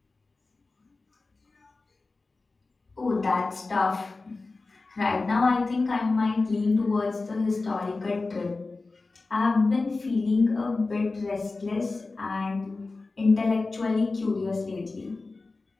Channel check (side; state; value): right; quieter; 3.6 dB